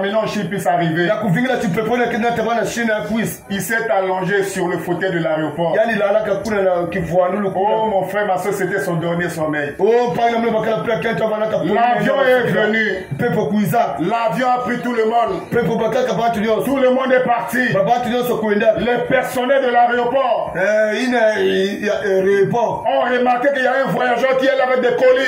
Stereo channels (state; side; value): identical; both; correlation 1.00